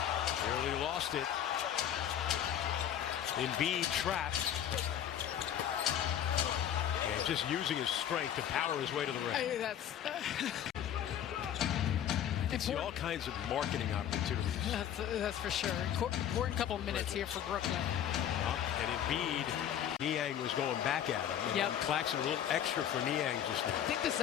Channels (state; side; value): quieter; right; 10.0 dB